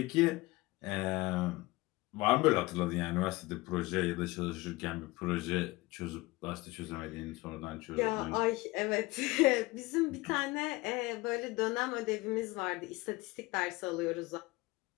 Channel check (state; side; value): quieter; right; 21.4 dB